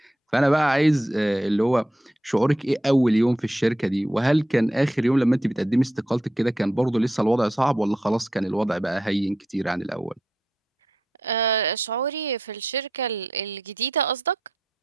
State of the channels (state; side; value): normal; both; correlation 0.82